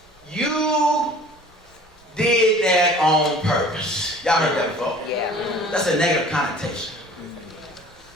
you. You did that on purpose. Y'all heard that before? Yeah. That's a negative connotation.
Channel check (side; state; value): both; normal; correlation 0.47